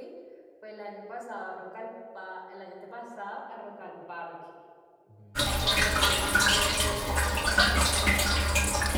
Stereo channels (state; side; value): identical; both; correlation 1.00